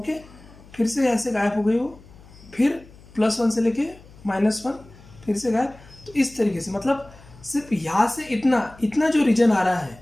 फिर से यहाँ से गायब हो गई हो, फिर +1 से लेके -1, फिर से गायब। तो इस तरीके से मतलब सिर्फ यहाँ से इतना जो रीजन आ रहा है,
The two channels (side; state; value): left; noise; hum, 22 dB below the sound